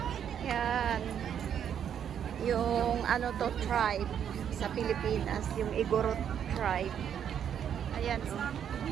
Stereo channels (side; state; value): left; quieter; 8.8 dB